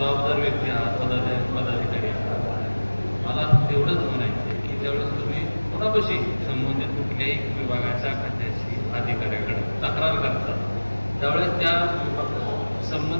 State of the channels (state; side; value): inverted; both; correlation -1.00